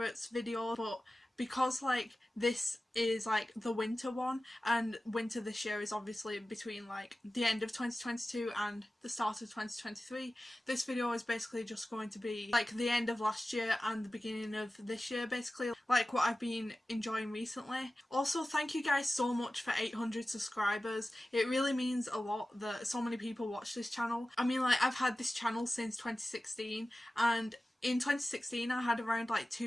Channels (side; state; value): both; normal; correlation 0.95